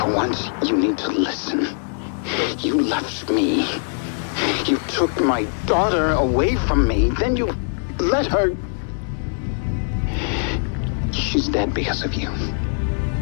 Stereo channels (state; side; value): silent; right; 64 dB below the other